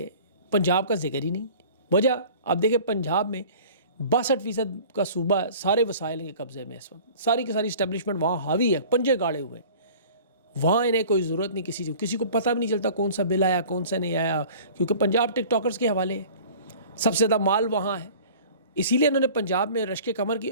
پنجاب کا ذکر ہی نہیں۔ وجہ آپ دیکھیں پنجاب میں 62% کا صوبہ سارے وسائل کے قبضے میں اس وقت، ساری کی ساری اسٹیبلشمنٹ وہاں حاوی ہے، پنجے گاڑے ہوئے ہیں۔ وہاں انہیں کوئی ضرورت نہیں کسی کو پتہ بھی نہیں چلتا کون سا بل آیا کون سا نہیں آیا، کیونکہ پنجاب ٹک ٹاکرز کے حوالے ہے، سب سے زیادہ مال وہاں ہے۔ اسی لیے انہوں نے پنجاب میں رشک کمر کی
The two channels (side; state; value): both; inverted; correlation -0.45